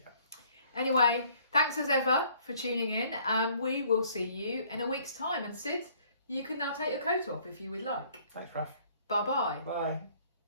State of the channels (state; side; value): inverted; both; correlation -0.59